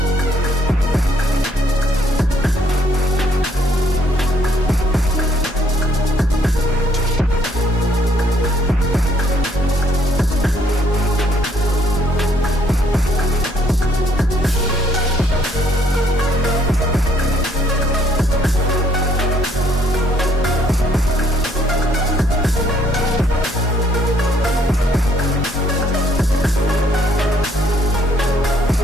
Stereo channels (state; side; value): normal; both; correlation 0.66